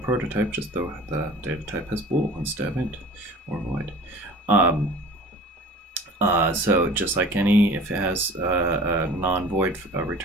prototype, just the data type has bool instead of int or void. So just like if it has a non-void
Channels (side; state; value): both; normal; correlation 0.43